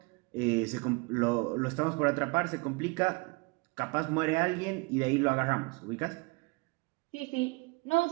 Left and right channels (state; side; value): quieter; left; 28.0 dB